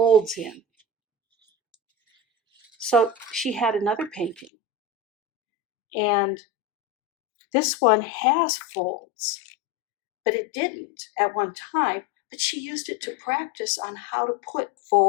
in. So she had another painting, and this one has folds, but it didn't at one time, but she used it to practice on how to put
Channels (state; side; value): drops out; right; at 4.5 s